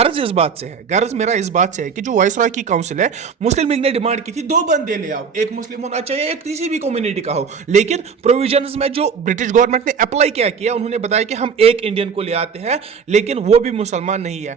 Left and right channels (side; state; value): left; quieter; 6.1 dB